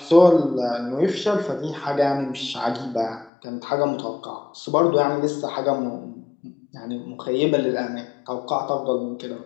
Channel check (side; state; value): right; drops out; at 3.3 s